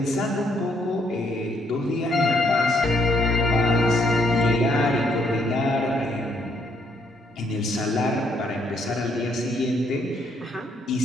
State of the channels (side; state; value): both; normal; correlation 0.71